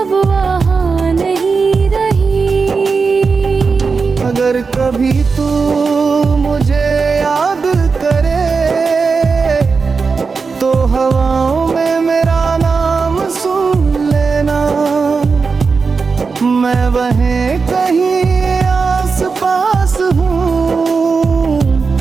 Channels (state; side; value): quieter; left; 4.8 dB